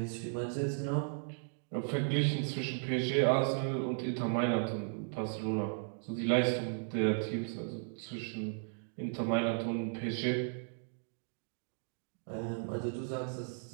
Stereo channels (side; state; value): left; silent; digital silence